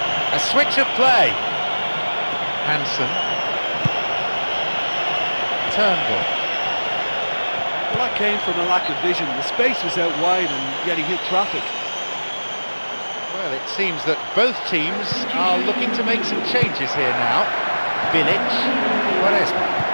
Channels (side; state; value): both; inverted; correlation -1.00